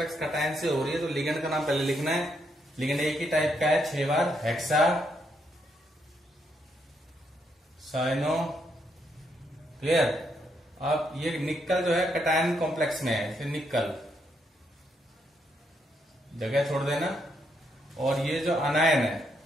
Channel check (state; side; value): normal; both; correlation 0.77